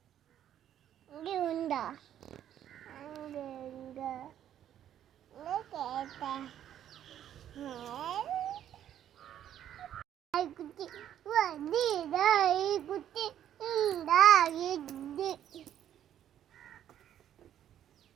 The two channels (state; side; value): quieter; left; 10.7 dB